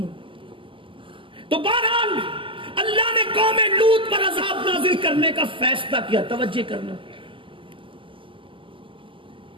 تو بہرحال اللہ نے قوم لوط پر عذاب نازل کرنے کا فیصلہ کیا. توجہ کرنا،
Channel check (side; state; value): left; late; 0.25 ms